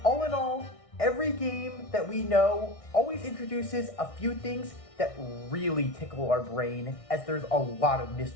All in all, every game that we know always introduces a few things that really tickle our brain, as there's a lot of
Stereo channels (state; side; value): late; right; 1.6 ms